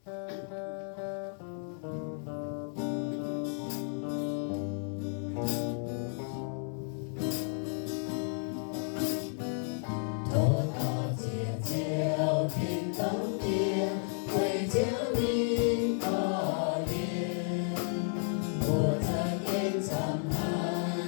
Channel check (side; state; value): right; silent; 56 dB below the other